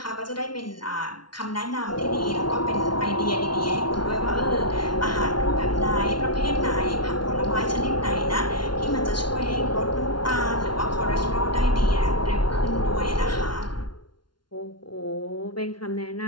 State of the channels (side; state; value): right; late; 0.71 ms